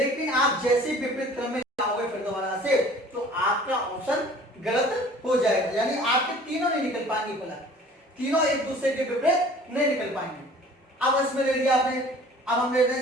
आप जैसे विपरीत क्रम में जाओगे फिर दोबारा से, तो आपका ऑप्शन गलत हो जाएगा, यानी आपके तीनों नहीं निकल पाएंगे, पहला तीनों एक दूसरे के विपरीत नहीं निकल पाएंगे। अब इसमें ले लिया आपने, अब हम ले रहे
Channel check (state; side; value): normal; both; correlation 0.48